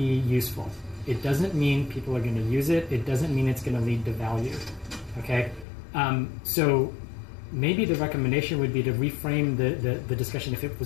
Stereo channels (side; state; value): right; drops out; at 5.7 s